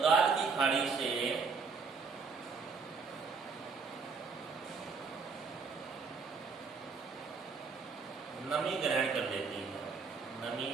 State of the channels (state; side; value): quieter; left; 5.1 dB